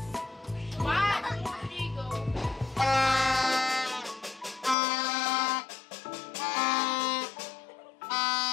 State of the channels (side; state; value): right; drops out; at 4.8 s